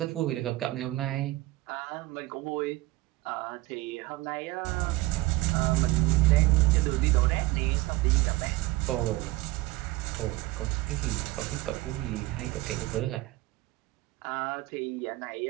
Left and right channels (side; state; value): left; quieter; 19.1 dB